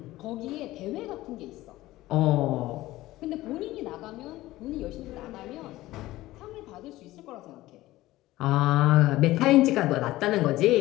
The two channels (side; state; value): right; quieter; 17.0 dB